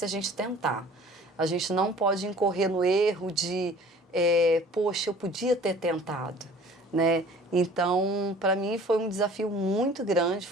a gente tentar. A gente não pode incorrer no erro de, poxa, eu podia ter tentado, né? Então, para mim foi um desafio muito grande,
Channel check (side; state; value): both; normal; correlation 0.49